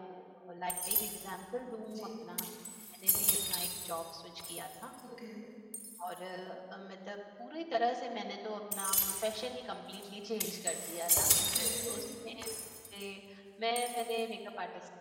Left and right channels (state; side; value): identical; both; correlation 1.00